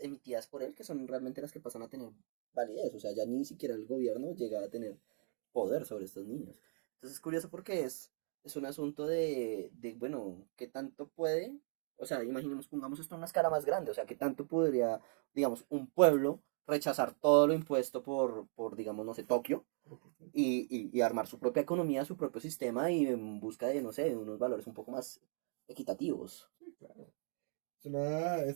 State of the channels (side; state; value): left; silent; 52 dB below the other